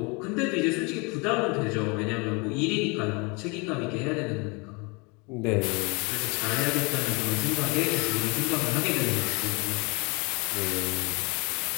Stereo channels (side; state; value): right; quieter; 29.5 dB